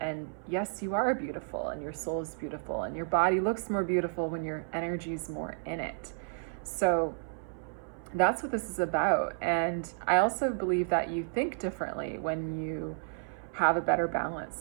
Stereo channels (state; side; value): silent; left; 57 dB below the other